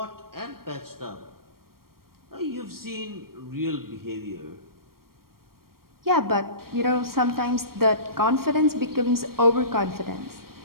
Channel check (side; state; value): left; late; 0.93 ms